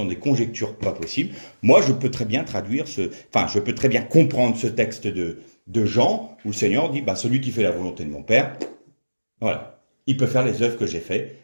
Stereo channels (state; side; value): inverted; both; correlation -1.00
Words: des conjectures pas possibles. Moi, je peux très bien je peux très bien comprendre ce texte de Jean, où le Seigneur dit, celui qui fait la volonté de mon Père, voilà, il peut faire les œuvres que j'ai faites,